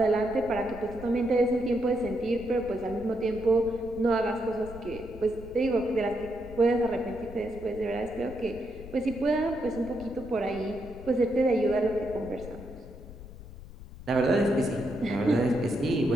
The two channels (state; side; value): noise; left; rumble, 15 dB below the sound